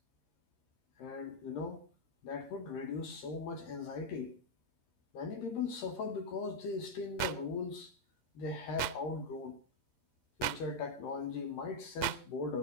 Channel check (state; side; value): late; right; 8.3 ms